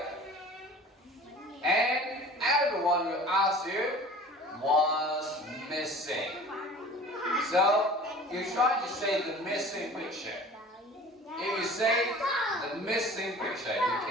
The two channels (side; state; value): both; normal; correlation 0.43